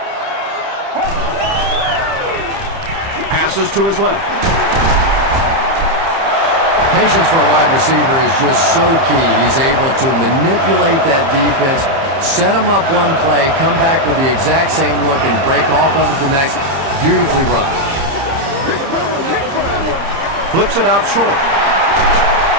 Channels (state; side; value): late; left; 30 ms